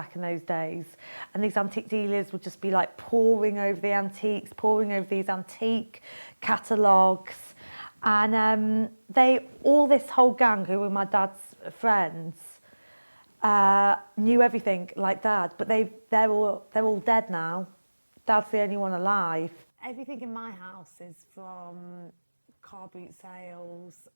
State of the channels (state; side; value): inverted; both; correlation -1.00